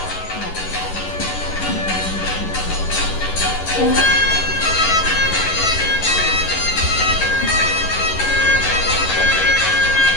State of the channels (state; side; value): late; right; 11 ms